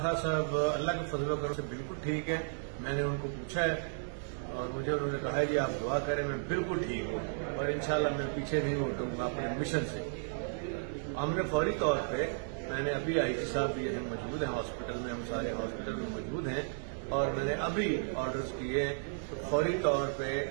साहब अल्लाह के फजल करम से बिल्कुल ठीक है। मैंने उनको पूछा है और मुझे उन्होंने कहा है जी आप दुआ करें, मैं बिल्कुल ठीक हूँ और इंशाल्लाह मैं पीछे नहीं हटूंगा अपने मिशन से। हमने फौरी तौर पे, मैंने अभी आईजी साहब भी यहाँ मौजूद हैं हॉस्पिटल में, हम सारे हॉस्पिटल में मौजूद हैं और मैंने अभी ऑर्डर्स किए हैं तो फौरी तौर पे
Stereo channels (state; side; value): silent; left; 55 dB below the other